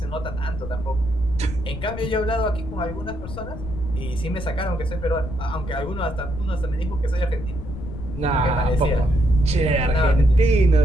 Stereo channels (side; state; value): left; noise; rumble, 10 dB below the sound